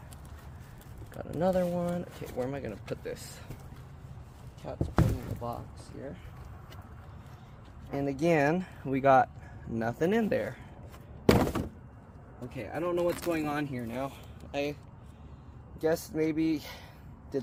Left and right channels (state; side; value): identical; both; correlation 1.00